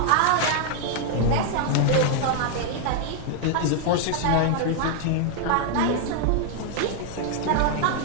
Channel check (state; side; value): different; both; correlation 0.00